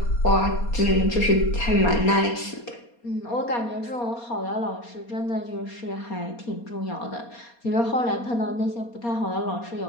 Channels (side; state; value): right; late; 4.2 ms